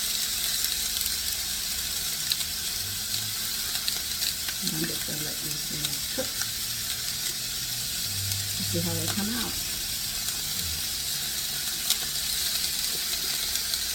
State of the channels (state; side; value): identical; both; correlation 1.00